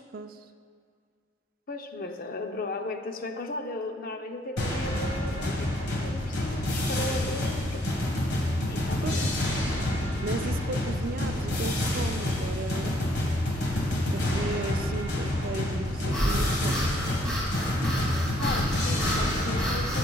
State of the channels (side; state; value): both; normal; correlation 0.67